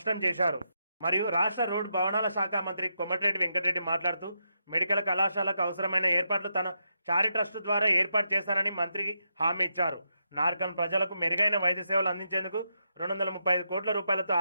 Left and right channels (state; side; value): inverted; both; correlation -0.82